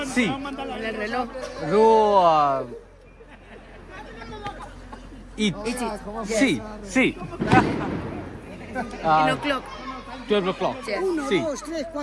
Sí. En el reloj. Ro eat. Sí, sí. En o'clock. 12 o'clock. Yes. Sí. 2, 3,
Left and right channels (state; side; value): identical; both; correlation 1.00